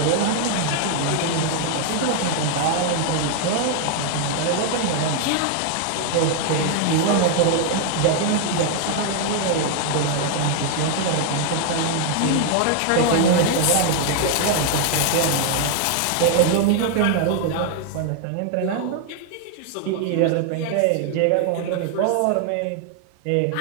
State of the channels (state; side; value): different; both; correlation 0.00